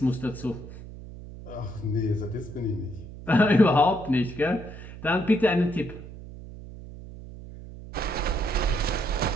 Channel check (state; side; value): noise; right; hum, 14 dB below the sound